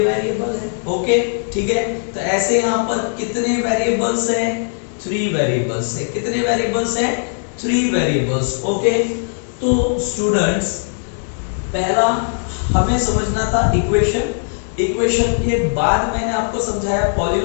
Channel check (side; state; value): right; silent; digital silence